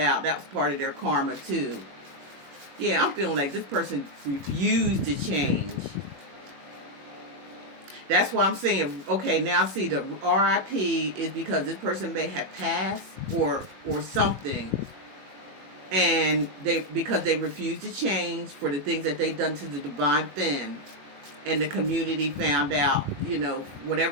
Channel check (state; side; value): late; left; 21 ms